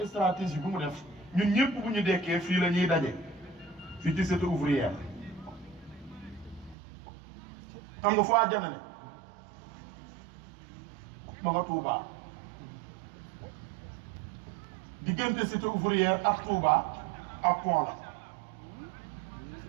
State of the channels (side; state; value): left; drops out; at 6.8 s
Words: stratégie bu mu def ñun ñëpp bu ñu dekkee fii la ñuy daje fii ci cité ouvrière xam nga foo àjjana ne ma nga Touba diggante cité ouvrière ak Touba ak pont la